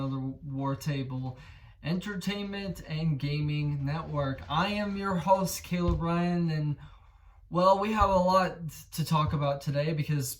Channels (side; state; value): both; identical; correlation 1.00